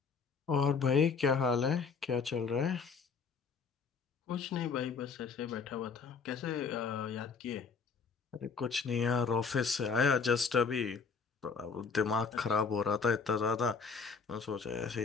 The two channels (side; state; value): right; quieter; 5.3 dB